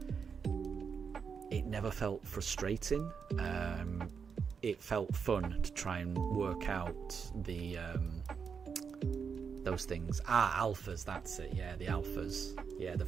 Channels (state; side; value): quieter; left; 6.2 dB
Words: it never felt frustrating. It felt fun to try and work out those things. Alphas, that's it. Yeah, the alphas. Yeah, the